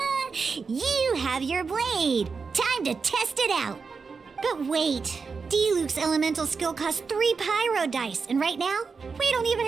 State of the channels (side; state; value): left; quieter; 5.0 dB